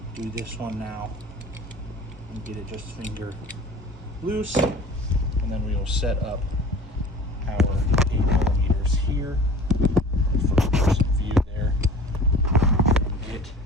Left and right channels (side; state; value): both; normal; correlation 0.43